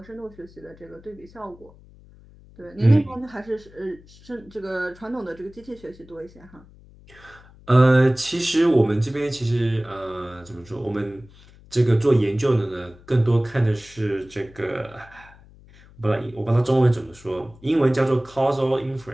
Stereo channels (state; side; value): noise; left; hum, 24 dB below the sound